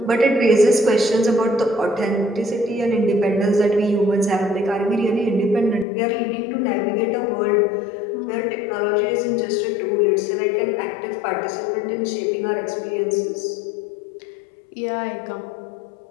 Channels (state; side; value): drops out; right; at 5.9 s